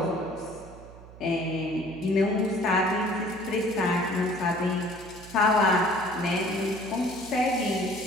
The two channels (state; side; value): noise; right; hum, 18 dB below the sound